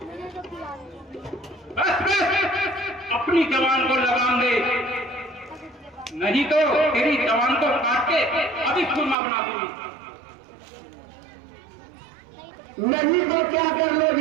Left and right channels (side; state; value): left; drops out; at 9.2 s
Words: बस अपनी जवान को लगाम दे, नहीं तो तेरी जवान को काट के अभी खुरमा बना दूंगी। नहीं तो क्या कर